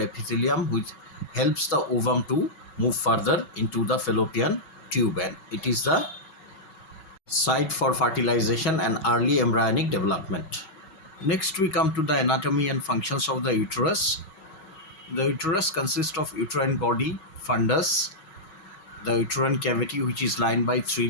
which helps the ovum to move further into the fallopian tube, and it is the site for fertilization and early embryonic development. Next we come to the anatomy and functions of the uterus. The uterus consists of uterine body, fundus, the uterine cavity, which is lined by 3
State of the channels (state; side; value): late; right; 5.4 ms